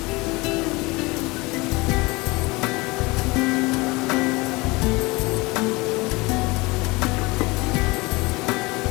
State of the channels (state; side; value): quieter; right; 23.9 dB